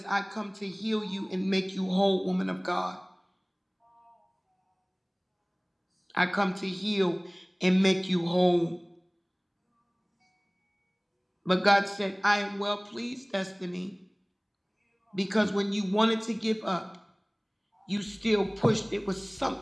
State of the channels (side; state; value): both; identical; correlation 1.00